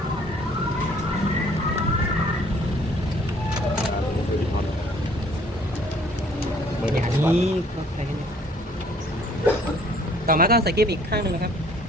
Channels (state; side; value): normal; both; correlation 0.58